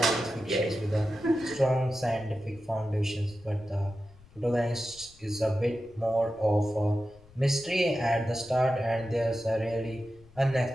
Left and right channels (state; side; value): noise; left; rumble, 25 dB below the sound